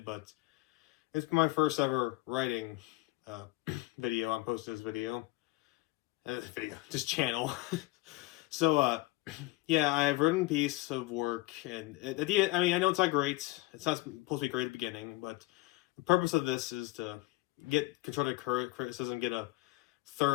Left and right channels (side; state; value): right; quieter; 20.5 dB